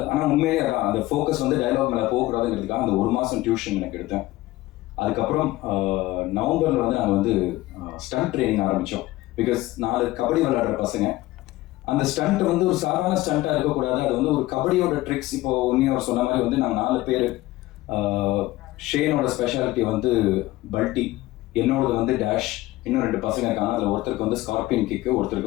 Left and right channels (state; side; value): quieter; right; 17.9 dB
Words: ஆனால் உண்மையே அதான் அந்த ஃபோக்கஸ் வந்து டைலாக் மேலே போகக்கூடாதுங்கிறதுக்காக அந்த 1 மாதம் டியூஷன் எனக்கு எடுத்தேன். அதுக்கப்புறம் நவம்பரில் வந்து நாங்கள் வந்து ஸ்டண்ட் ட்ரைனிங் ஆரம்பித்தோம். பிகாஸ் 4 கபடி விளையாடுற பசங்க, அந்த ஸ்டண்ட் வந்து ஒரு சாதாரண ஸ்டண்ட்டாக இருக்கக்கூடாது, அது வந்து ஒரு கபடியோட ட்ரிக்ஸ். இப்போ அவர் சொன்ன மாதிரி வந்து நாங்கள் 4 பேர், ஷேனோட ஸ்பெஷாலிட்டி வந்து பல்ட்டி, என்னோடது வந்து டேஷ், இன்னும் 2 பசங்க இருக்காங்க. அதில் ஒருத்தருக்கு வந்து ஸ்கார்பியன் கிக்கு,